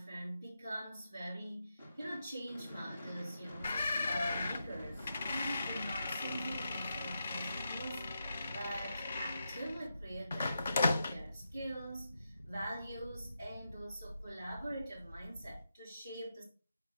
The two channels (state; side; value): inverted; both; correlation -0.86